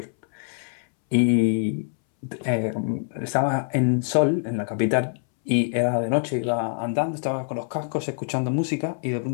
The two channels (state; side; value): silent; right; 62 dB below the other